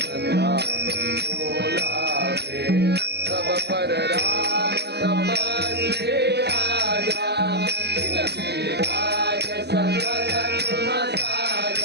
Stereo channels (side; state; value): left; late; 0.49 ms